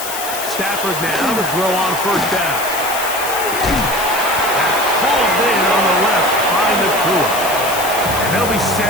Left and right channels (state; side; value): noise; left; hiss, 7 dB below the sound